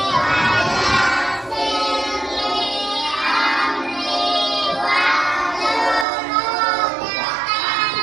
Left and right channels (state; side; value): drops out; left; at 6.1 s